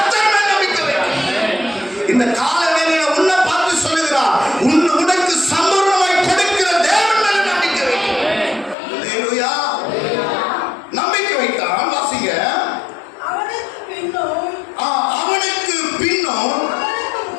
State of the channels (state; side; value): drops out; right; at 8.8 s